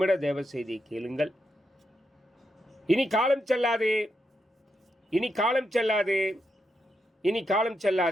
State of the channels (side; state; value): both; normal; correlation 0.84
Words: தேவ செய்தியை கேளுங்கள். இனி காலம் செல்லாது, இனி காலம் செல்லாது, இனி காலம்